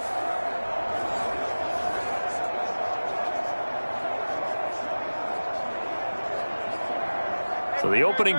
So the opening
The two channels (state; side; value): inverted; both; correlation -1.00